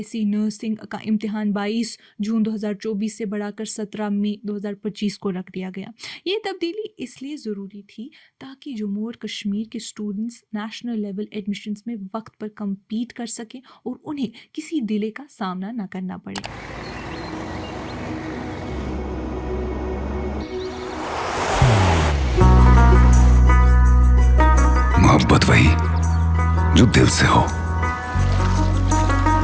नर्सिंग का इम्तिहान 22 जून 2024 से बढ़ाकर 17 मई 2025 को रख दिया गया। ये तब्दीली इसलिए ज़रूरी थी ताकि जम्मू और कश्मीर के स्टूडेंट्स नेशनल लेवल एडमिशन्स में वक्त पर कम्पीट कर सकें और उन्हें किसी डिले का सामना न करना पड़े। मोहब्बत वही जो दिल से हो,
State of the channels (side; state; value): both; identical; correlation 1.00